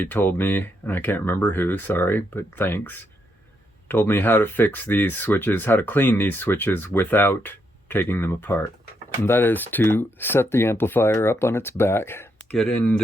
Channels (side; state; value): both; normal; correlation 0.78